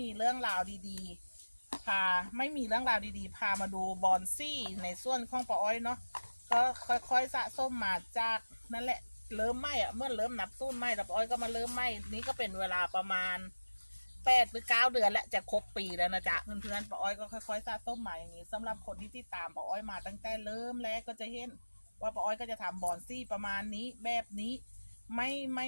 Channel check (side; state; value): both; inverted; correlation -1.00